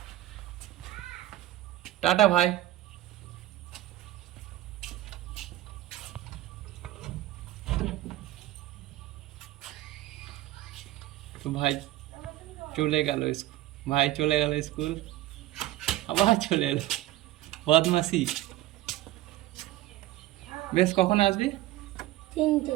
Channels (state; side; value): quieter; left; 15.4 dB